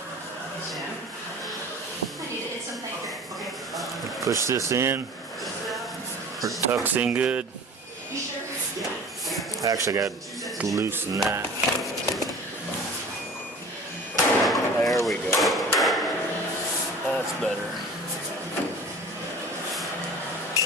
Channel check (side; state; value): both; normal; correlation 0.42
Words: Sam? I need to hit some paper. Okay. Push this in. It tucks in good. You sure? I actually got to loosen that. There we go. That's better.